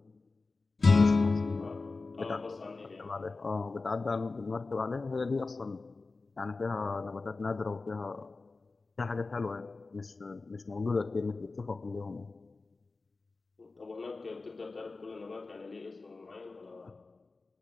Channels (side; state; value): right; quieter; 3.7 dB